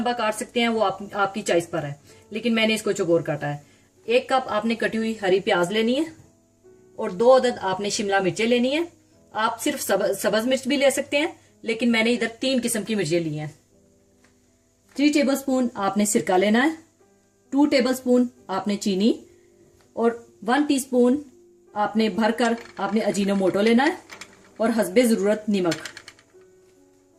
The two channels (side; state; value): both; identical; correlation 1.00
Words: काट सकते हैं, वो आपकी चॉइस पर है, लेकिन मैंने इसको चौकोर काटा है। 1 कप आपने कटी हुई हरी प्याज लेनी है और 2 अदद आपने शिमला मिर्चें लेनी है। आप सिर्फ सब्ज मिर्च भी ले सकते हैं, लेकिन मैंने इधर 3 किस्म की मिर्चें ली हैं। 3 टेबलस्पून आपने सिरका लेना है, 2 टेबलस्पून आपने चीनी और 1 टीस्पून आपने भरकर आपने अजीनोमोटो लेना है और हस्बे जरूरत नमक।